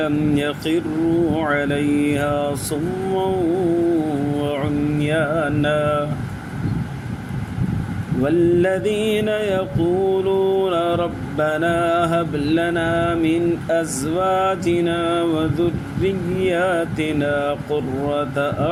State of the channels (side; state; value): both; identical; correlation 1.00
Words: لم يخروا عليها صما وعميانا والذين يقولون ربنا هب لنا من أزواجنا وذرياتنا قرة